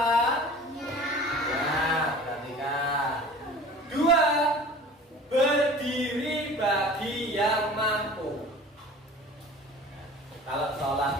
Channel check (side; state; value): both; normal; correlation 0.42